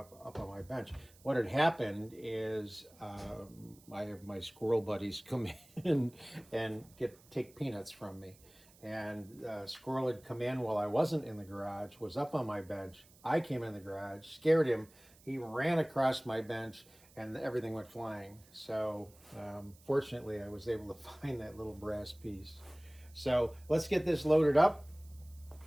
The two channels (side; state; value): right; noise; hiss, 26 dB below the sound